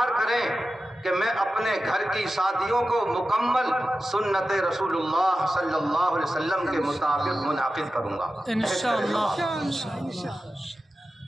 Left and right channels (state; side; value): normal; both; correlation 0.93